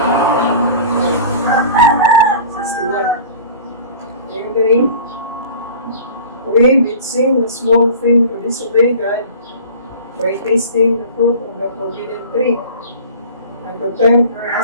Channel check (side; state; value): both; inverted; correlation -0.40